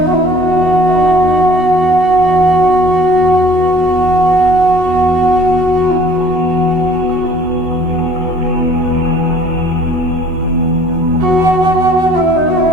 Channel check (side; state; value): left; late; 14 ms